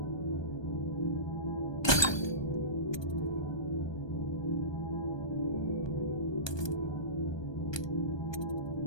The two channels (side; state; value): right; late; 1.2 ms